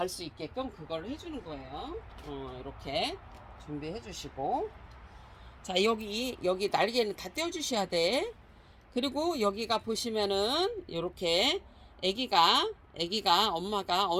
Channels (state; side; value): identical; both; correlation 1.00